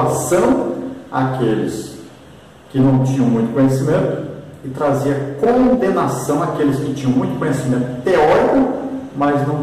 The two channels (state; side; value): identical; both; correlation 1.00